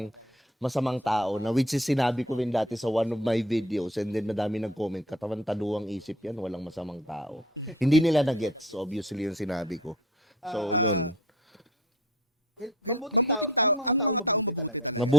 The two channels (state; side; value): normal; both; correlation 0.48